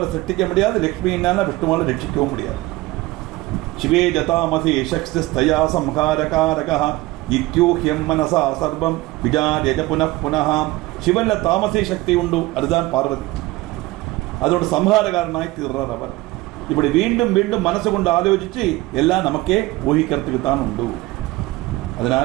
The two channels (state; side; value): quieter; left; 19.6 dB